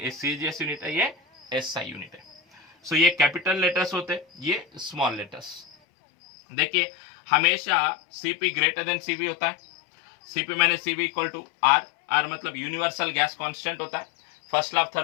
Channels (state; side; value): drops out; right; at 5.8 s